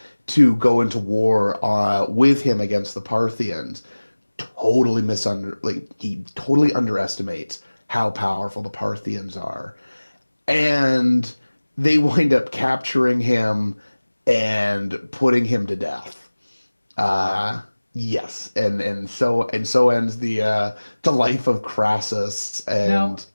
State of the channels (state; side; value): inverted; both; correlation -1.00